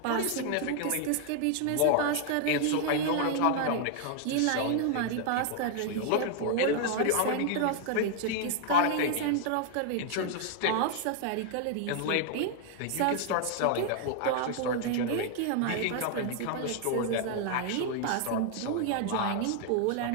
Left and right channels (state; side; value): different; both; correlation 0.00